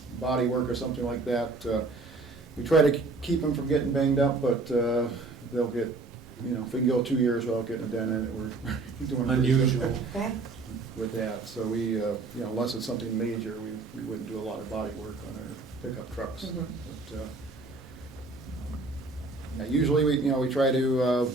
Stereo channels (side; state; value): left; quieter; 3.5 dB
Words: body work or something like that, we try to keep them from getting banged up, but they'll get, if we can go 2 years without getting a dent in it, we're doing pretty good Unusual. Okay. with that. So we, unless it's something major, we wouldn't do a lot of body work on our pickup trucks. Mhm. But usually we try to